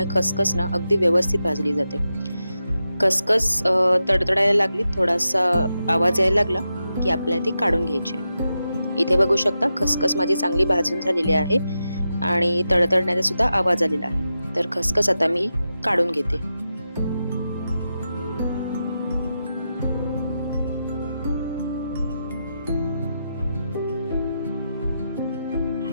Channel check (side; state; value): both; inverted; correlation -0.89